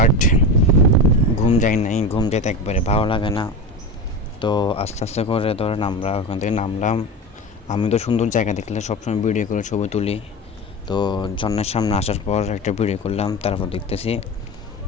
ঘুম যায় নাই। ঘুম যেতে একবারে ভালো লাগে না। তো আস্তে আস্তে করে ধরেন আমরা ওখান থেকে নামলাম। আমি তো সুন্দর জায়গা দেখলে সবসময় ভিডিও করে ছবি তুলি। তো ঝর্ণার সামনে আসার পর একটা ভিডিও করলাম। তারপর দেখতেছি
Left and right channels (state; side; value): normal; both; correlation 0.26